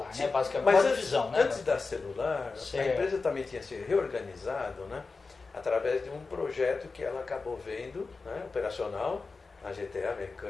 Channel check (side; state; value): right; quieter; 4.1 dB